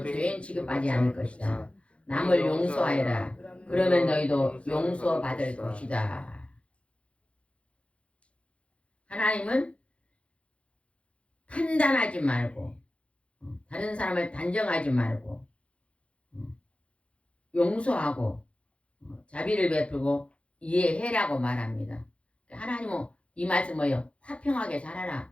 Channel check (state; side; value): late; right; 0.061 ms